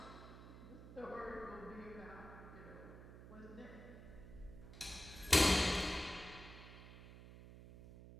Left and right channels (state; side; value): noise; right; hum, 14 dB below the sound